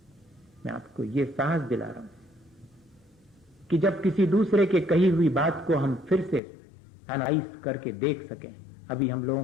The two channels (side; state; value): right; drops out; at 6.4 s